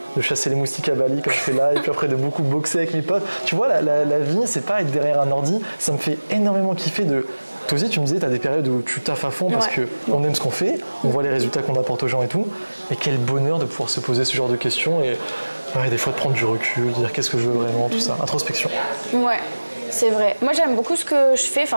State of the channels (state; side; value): inverted; both; correlation -1.00